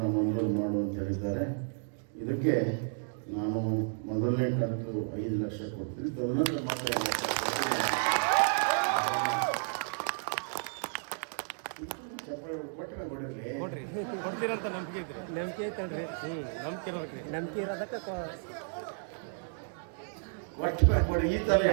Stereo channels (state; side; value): silent; left; digital silence